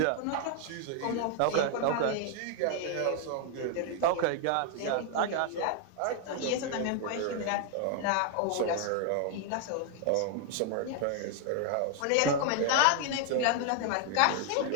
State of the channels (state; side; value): different; both; correlation 0.00